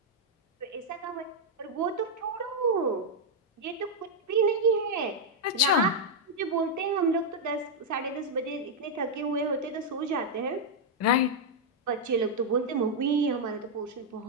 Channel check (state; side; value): normal; both; correlation -0.01